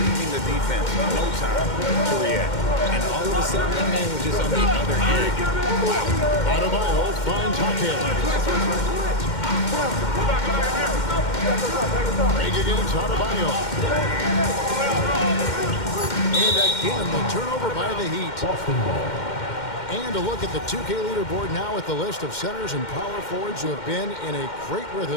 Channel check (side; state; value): right; late; 2.1 ms